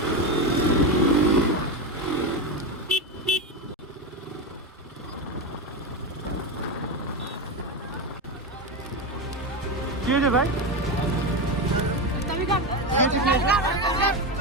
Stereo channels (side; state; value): both; normal; correlation 0.15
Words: কি হয়েছে ভাই?